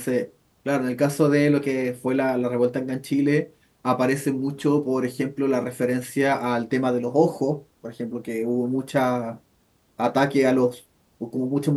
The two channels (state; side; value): identical; both; correlation 1.00